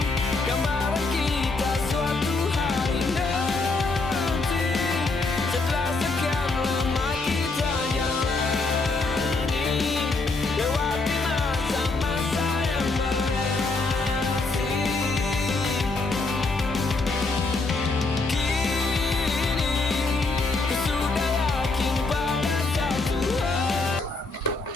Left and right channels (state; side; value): quieter; right; 3.5 dB